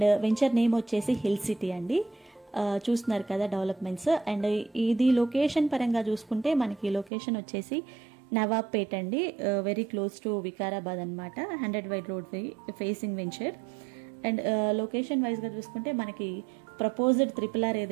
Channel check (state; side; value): drops out; left; at 7.1 s